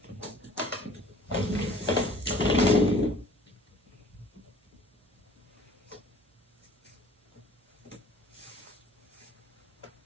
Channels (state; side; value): normal; both; correlation 0.51